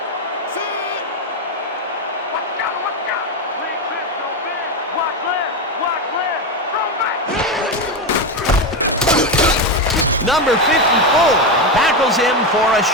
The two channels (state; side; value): normal; both; correlation 0.12